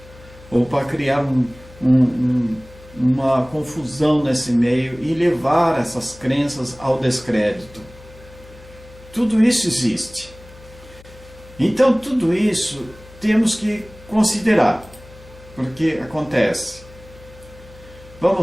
Ou para criar uma confusão nesse meio e levar essas crenças ao descrédito. Tudo isso existe. Então tudo isso temos que considerar, porque acontece.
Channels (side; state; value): left; noise; hum, 21 dB below the sound